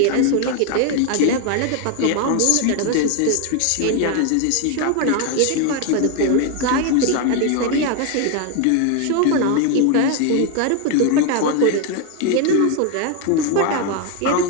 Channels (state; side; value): different; both; correlation 0.01